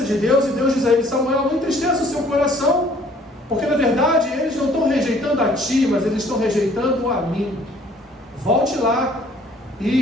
de Deus, e Deus diz a ele: Samuel, não entristeça o seu coração, porque na verdade eles não estão rejeitando a ti, mas eles estão rejeitando a mim. Volte lá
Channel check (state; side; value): normal; both; correlation 0.58